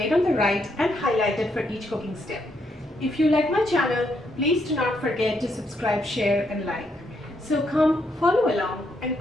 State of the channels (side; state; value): both; normal; correlation 0.76